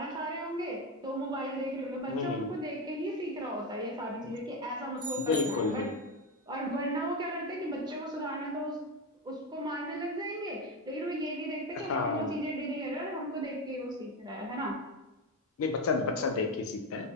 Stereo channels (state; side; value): normal; both; correlation 0.15